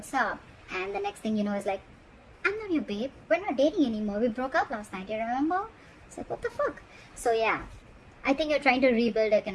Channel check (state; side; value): identical; both; correlation 1.00